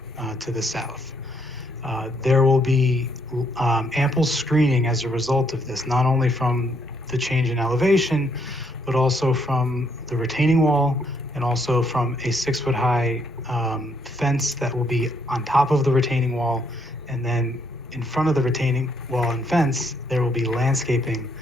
to the south. There will be ample screening as a result of this, not only from the change in elevation, but also from the retaining wall and also from a 6-foot high fence that will be on top of the retaining wall. And then in front of the retaining wall and fence, there will be landscaping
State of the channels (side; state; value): both; normal; correlation 0.71